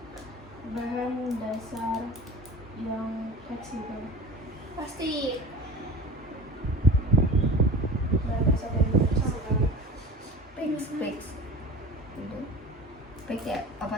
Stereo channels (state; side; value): normal; both; correlation 0.36